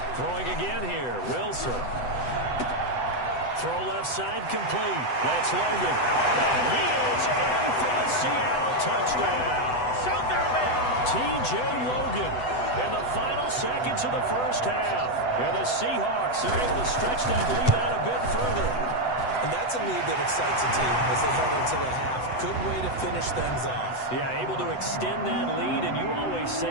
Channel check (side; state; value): right; late; 8.0 ms